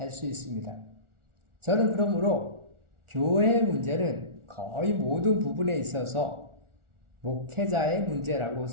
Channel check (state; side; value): late; left; 1.4 ms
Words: 수 있습니다. 저는 그러므로 교회의 문제는 거의 모든 부분에 있어서 목회자의 문제라고